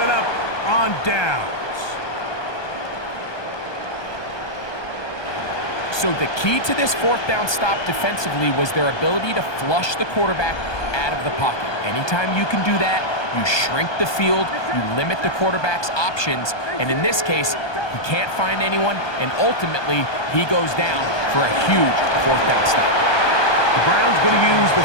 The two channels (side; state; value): right; late; 1.2 ms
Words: up on downs. So the key to this 4th down stop defensively was their ability to flush the quarterback out of the pocket. Anytime you can do that, you shrink the field, you limit the quarterback's options, and in this case, he can't find anyone, and ultimately, he goes down for a huge 4th down stop. The Browns going to use